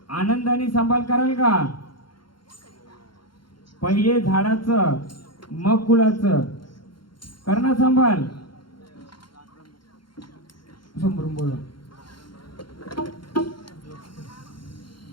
आनंदाने सांभाळ कराल का? पहिले झाडाचं मग फुलाचं करणार सांभाळ. समोरून बोला.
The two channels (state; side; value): late; right; 0.73 ms